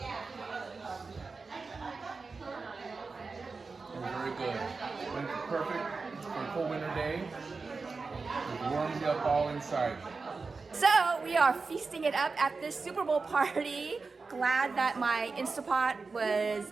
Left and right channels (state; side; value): quieter; left; 4.3 dB